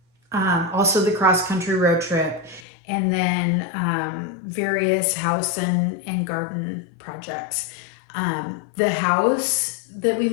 Also the cross-country road trip, and then various house and garden projects. The house that we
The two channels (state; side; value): drops out; right; at 2.6 s